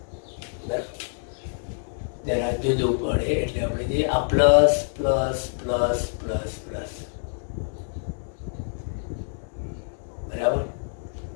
જરા જુદું પડે એટલે આપણે જે આ plus plus plus plus plus, બરાબર.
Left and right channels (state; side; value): silent; right; 61 dB below the other